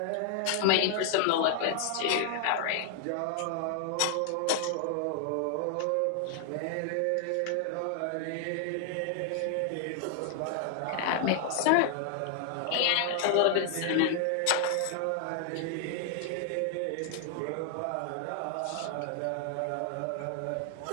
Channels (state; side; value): different; both; correlation 0.00